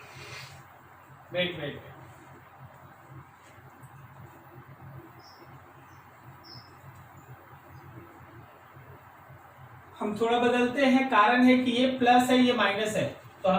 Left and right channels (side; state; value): both; identical; correlation 1.00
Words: वेट वेट, हम थोड़ा बदलते हैं। कारण है कि ये प्लस है, ये माइनस है, तो